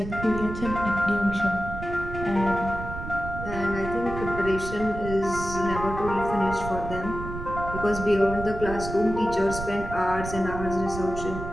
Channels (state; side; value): noise; right; rumble, 8 dB below the sound